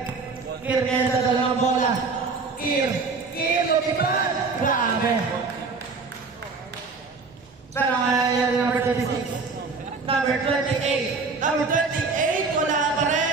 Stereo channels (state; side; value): quieter; left; 4.3 dB